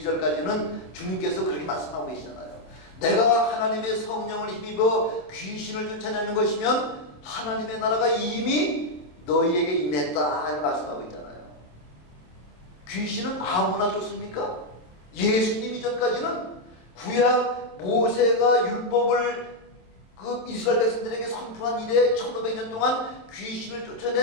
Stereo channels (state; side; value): late; right; 27 ms